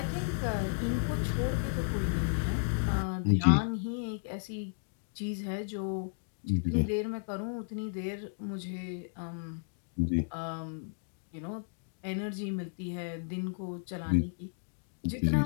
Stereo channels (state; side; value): silent; right; digital silence